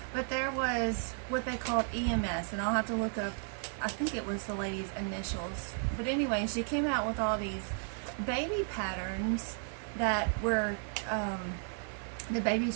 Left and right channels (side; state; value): left; silent; 55 dB below the other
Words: but there was what they called EMS, and I'll have to look up, I think it was the lady's initials. But anyway, she came out with all these baby patterns that were, the